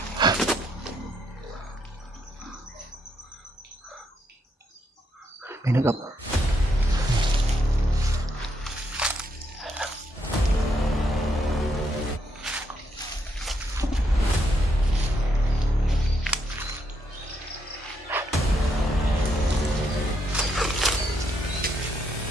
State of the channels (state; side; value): normal; both; correlation 0.77